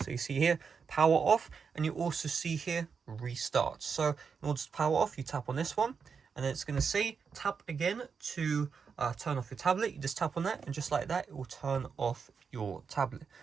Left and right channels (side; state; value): left; quieter; 5.9 dB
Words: you see here power off, and you also see here restart. So in order to power off, you tap on this one, and then it's going to say tap again to turn off your tablet. You just tap on that, and just like that, it will turn off your tablet.